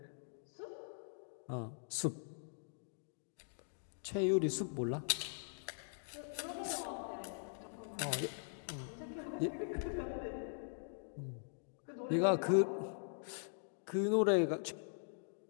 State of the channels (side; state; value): right; silent; digital silence